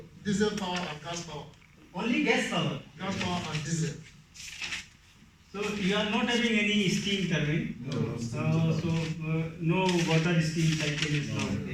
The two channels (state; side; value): identical; both; correlation 1.00